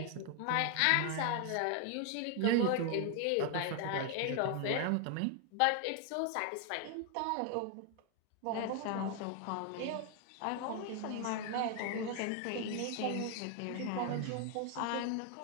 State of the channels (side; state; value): both; different; correlation 0.00